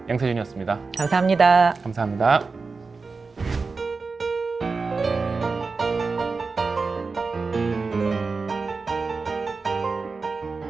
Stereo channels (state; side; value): quieter; left; 4.3 dB